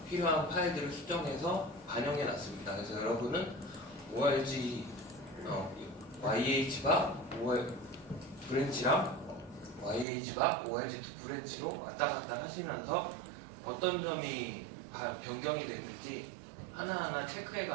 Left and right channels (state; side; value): drops out; left; at 10.1 s